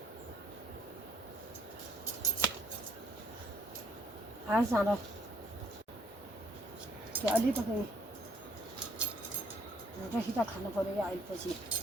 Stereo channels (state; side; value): normal; both; correlation 0.65